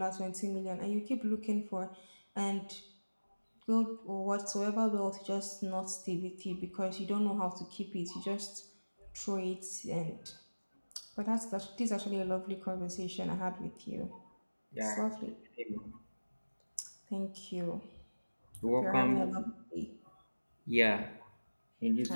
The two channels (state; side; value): inverted; both; correlation -1.00